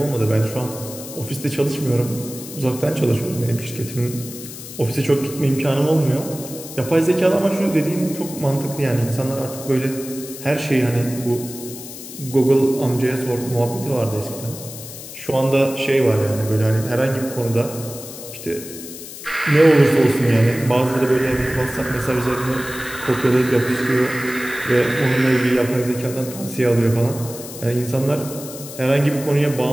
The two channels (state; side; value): noise; left; hiss, 13 dB below the sound